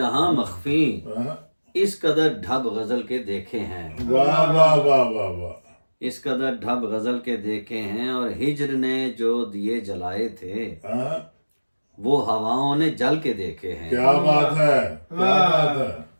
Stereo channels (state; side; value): inverted; both; correlation -1.00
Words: مخفی، اس قدر ڈھب غزل کے دیکھے ہیں، واہ واہ واہ واہ واہ، اس قدر ڈھب غزل کے دیکھے ہیں، اور ہجر نے جو دیے جلائے تھے وہ ہواؤں نے جل کے دیکھے ہیں، کیا بات ہے، کیا بات ہے،